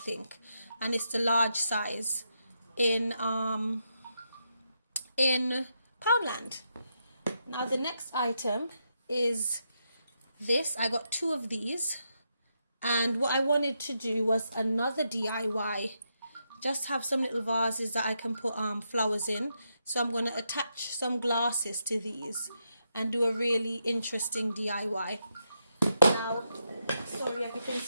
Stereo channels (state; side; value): inverted; both; correlation -0.82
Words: and it's the large size in Poundland. Now the next item is this. I got 2 of these, and what I wanted to do was another DIY. Just have some little vases that I can put flowers in. So I'm going to attach some glasses to these and do a really interesting DIY. Now, sorry,